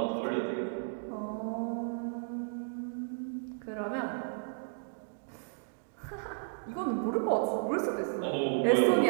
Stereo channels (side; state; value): left; silent; digital silence